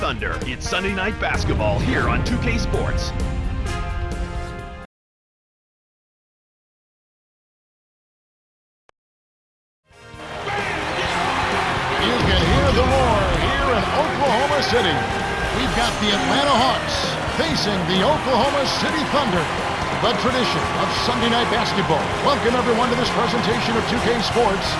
It's Sunday Night Basketball here on 2K Sports. You can hear the roar here in Oklahoma City. We've got the Atlanta Hawks facing the Oklahoma City Thunder. The tradition of Sunday Night Basketball. Welcome everyone to this presentation of 2K Sports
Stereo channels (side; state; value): both; identical; correlation 1.00